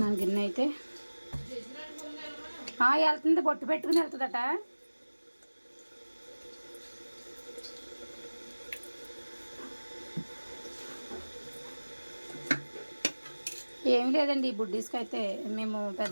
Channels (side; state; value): both; inverted; correlation -1.00